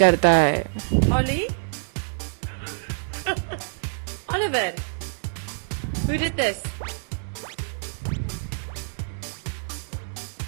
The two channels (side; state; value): left; silent; digital silence